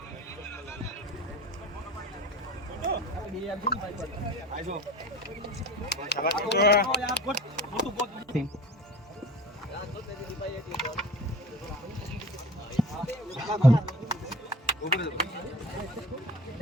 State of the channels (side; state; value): both; normal; correlation 0.38